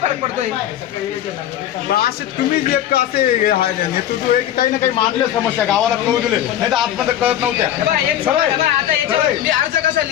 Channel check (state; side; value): quieter; right; 11.5 dB